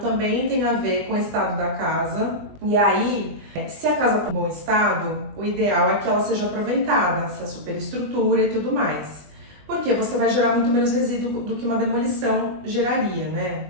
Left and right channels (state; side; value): late; left; 20 ms